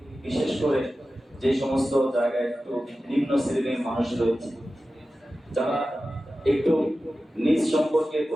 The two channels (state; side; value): normal; both; correlation 0.94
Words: বিশেষ করে যে সমস্ত জায়গায় একটু নিম্ন শ্রেণীর মানুষ রয়েছে, যারা একটু নিজ সম্পর্কে,